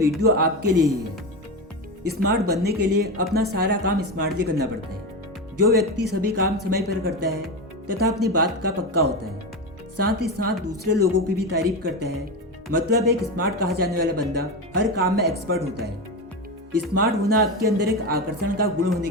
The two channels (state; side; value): normal; both; correlation 0.18